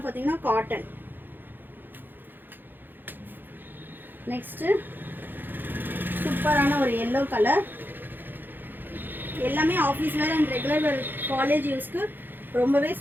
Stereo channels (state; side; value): late; left; 0.093 ms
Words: பார்த்தீங்கன்னா காட்டன். நெக்ஸ்ட்டு சூப்பரான ஒரு எல்லோ கலர். எல்லாமே office wear and regular wear college யூஸ்க்கு ரொம்பவே